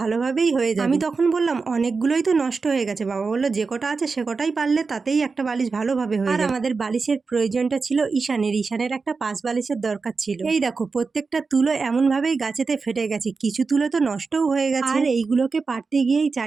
হয়ে যাবে। আমি তখন বললাম অনেকগুলোই তো নষ্ট হয়ে গেছে। বাবা বললো যে কটা আছে সে কটাই পারলে তাতেই একটা বালিশ ভালোভাবে হয়ে যাবে। আর আমাদের বালিশের প্রয়োজনটা ছিল ঈশানের একটা পাঁচ বালিশের দরকার ছিল। এই দেখো প্রত্যেকটা তুলো এমন ভাবেই গাছেতে ফেটে গেছে, কিছু তুলো তো নষ্টও হয়ে গেছে। আর এইগুলোকে পারতে গিয়েই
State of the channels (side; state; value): left; quieter; 4.5 dB